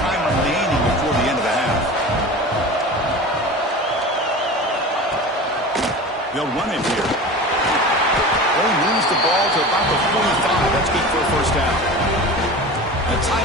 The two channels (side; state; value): both; normal; correlation 0.34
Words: remaining before the end of the half. They'll run it here. They moves the ball to about the 45. That's good for a first down. A